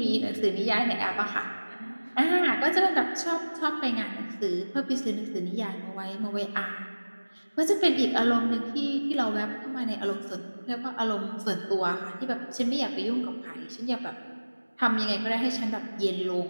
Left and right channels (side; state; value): both; inverted; correlation -1.00